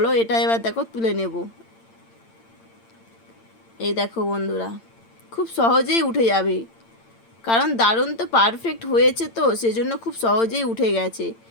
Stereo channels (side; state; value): right; late; 8.8 ms